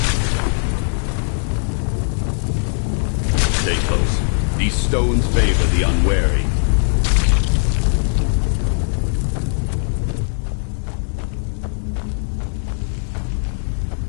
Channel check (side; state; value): right; silent; digital silence